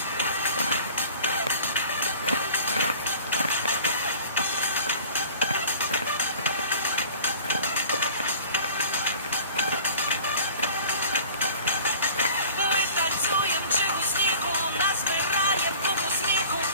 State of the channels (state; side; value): inverted; both; correlation -0.45